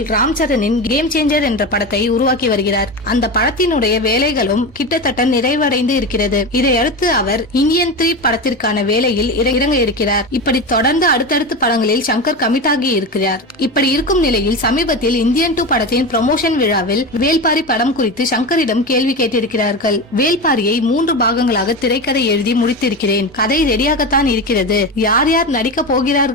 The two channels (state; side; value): normal; both; correlation 0.22